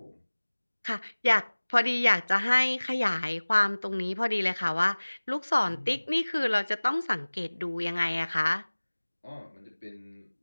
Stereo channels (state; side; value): inverted; both; correlation -1.00